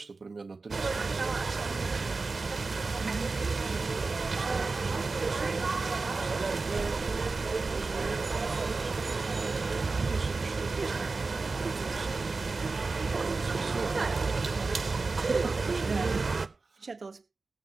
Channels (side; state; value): left; quieter; 3.9 dB